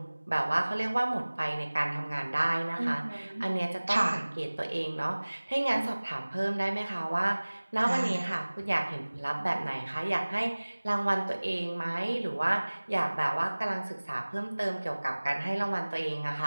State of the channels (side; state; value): both; inverted; correlation -1.00